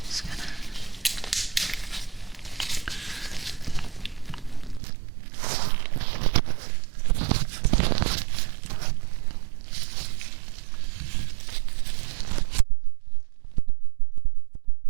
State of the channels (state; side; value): drops out; left; at 4.8 s